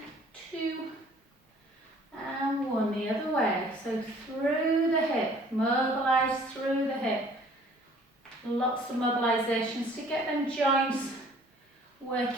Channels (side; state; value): both; normal; correlation 0.54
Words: 2, and 1, the other way, so through the hip, mobilise through the hip. Lots of mobilisations to get them joints